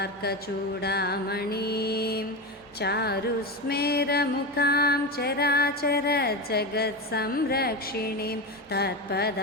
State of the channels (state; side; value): normal; both; correlation 0.19